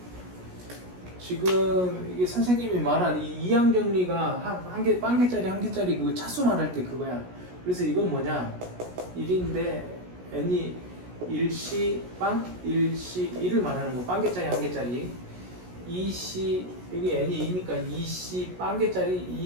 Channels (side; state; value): left; late; 17 ms